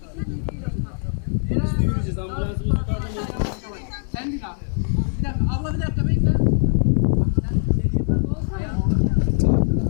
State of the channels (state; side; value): silent; right; digital silence